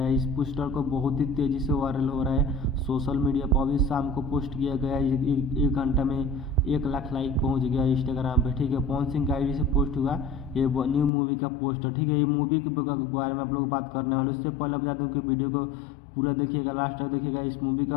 है। इस पोस्टर को बहुत ही तेज़ी से वायरल हो रहा है सोशल मीडिया पर। अभी शाम को पोस्ट किया गया है, एक घंटा में 1 लाख लाइक पहुंच गया इंस्टाग्राम पे। ठीक है, पवन सिंह का आईडी से पोस्ट हुआ ये न्यू मूवी का पोस्टर। ठीक है, ये मूवी के बारे में आप लोग बात करने वाले। उससे पहले बता दूँ कि वीडियो को पूरा देखिएगा, लास्ट तक देखिएगा। इस मूवी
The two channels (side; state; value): right; drops out; at 11.1 s